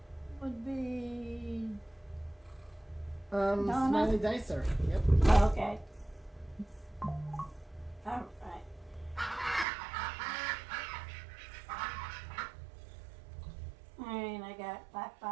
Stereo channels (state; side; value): drops out; left; at 9.7 s